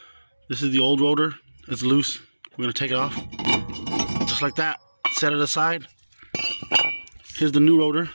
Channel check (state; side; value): inverted; both; correlation -1.00